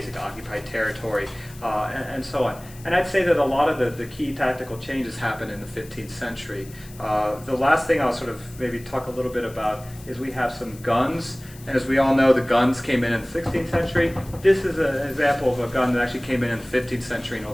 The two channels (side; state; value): left; noise; hiss, 21 dB below the sound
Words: occupy territory and so on. And I'd say that a lot of the key tactical changes happen in the 15th century. The last thing I'll sort of maybe talk a little bit about is we have some guns. And as we all know, the guns came in the 16th century. This is an example of a gun that actually came in the 15th century in